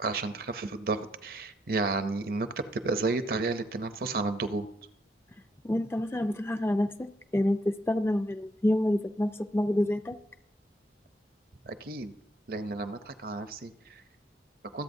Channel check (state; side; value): normal; both; correlation 0.73